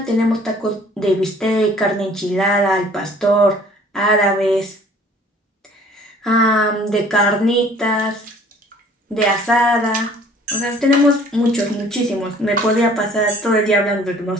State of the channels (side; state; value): both; normal; correlation 0.53